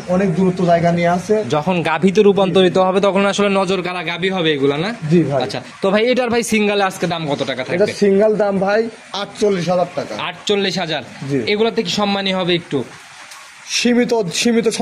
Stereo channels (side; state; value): both; identical; correlation 1.00